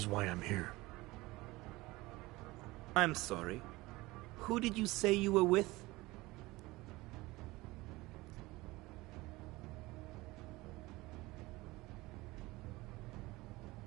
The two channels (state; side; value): quieter; left; 20.7 dB